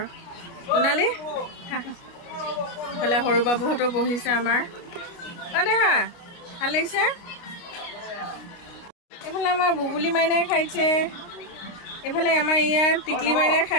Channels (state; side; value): late; right; 29 ms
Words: সোণালী ইফালে সৰু বাবুহঁতো বহিছে আমাৰ দেহা ভাল লাগিছে এইফালে আমাৰ বুবুলি মাইনাই খাইছে এইফালে আমাৰ ইয়াৰ টিকলি মাইনাই